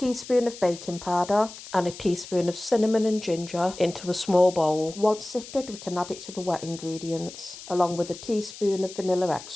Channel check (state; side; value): noise; left; hiss, 15 dB below the sound